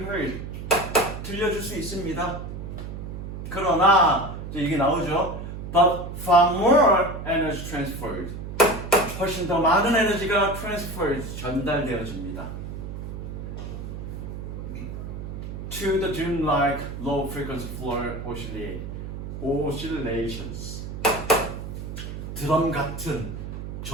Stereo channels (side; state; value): right; noise; hum, 8 dB below the sound